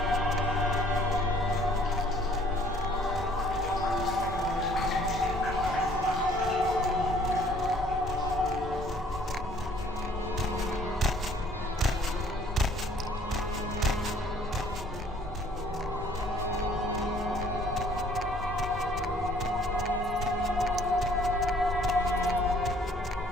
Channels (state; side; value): normal; both; correlation 0.58